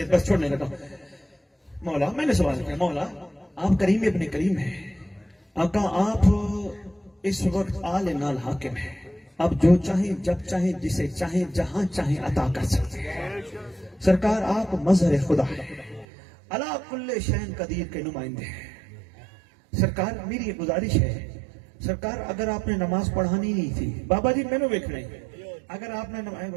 بس چھوڑنے لگا. مولا میں نے سوال کیا, مولا آپ کریم ابن کریم ہیں, آقا آپ اس وقت آل نال حاکم ہیں, آپ جو چاہیں جب چاہیں جسے چاہیں جہاں چاہیں عطا کر سکتے ہیں. سرکار آپ مظہر خدا ہیں, علی کل شین قدیر کے نمائندے ہیں. سرکار میری ایک گزارش ہے, سرکار اگر آپ نے نماز پڑھانی نہیں تھی, بابا جی میں نے ویکھ رہی, اگر آپ نے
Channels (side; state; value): left; drops out; at 16.1 s